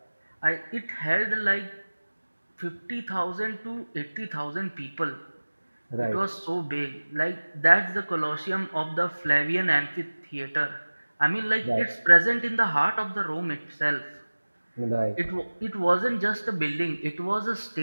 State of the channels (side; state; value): both; inverted; correlation -1.00